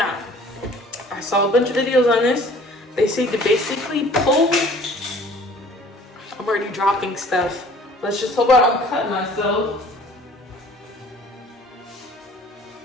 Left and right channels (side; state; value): both; normal; correlation 0.51